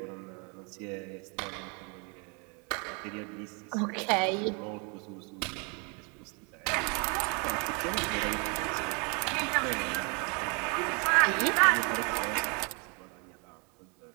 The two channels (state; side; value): quieter; left; 33.8 dB